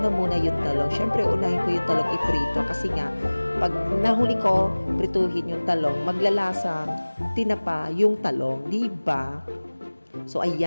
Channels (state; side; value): inverted; both; correlation -1.00